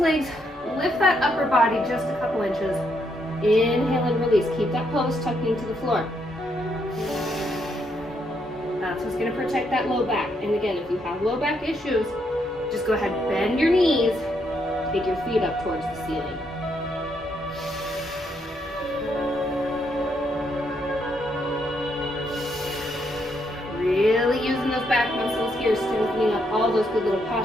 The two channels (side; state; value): both; normal; correlation 0.76